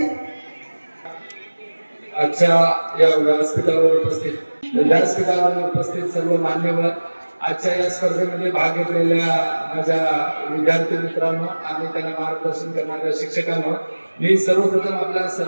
आजच्या या व्यासपीठावर उपस्थित सर्व मान्यवर, आजच्या या स्पर्धेमध्ये भाग घेतलेल्या माझ्या विद्यार्थी मित्रांनो आणि त्यांना मार्गदर्शन करणाऱ्या शिक्षकांनो, मी सर्वप्रथम आपल्या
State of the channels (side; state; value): both; inverted; correlation -1.00